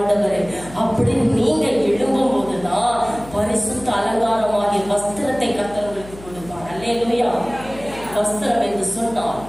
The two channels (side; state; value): left; noise; hum, 18 dB below the sound